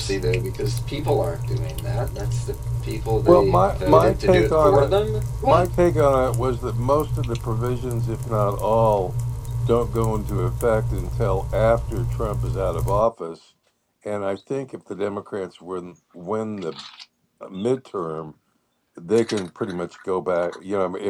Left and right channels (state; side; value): identical; both; correlation 1.00